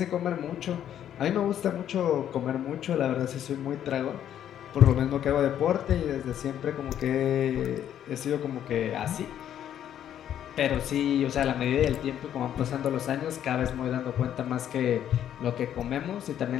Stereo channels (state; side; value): quieter; right; 10.4 dB